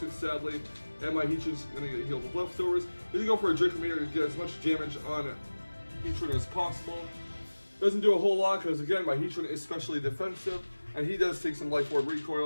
sadly. And my Heatran's going to get healed with leftovers. He's going to go for a Draco Meteor to get as much damage on Heatran as possible. Doesn't do a whole lot because, again, my Heatran is especially defensive. And he does take some Life Orb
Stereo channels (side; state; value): both; inverted; correlation -1.00